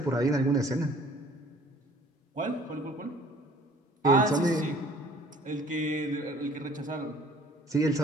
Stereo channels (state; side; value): normal; both; correlation 0.53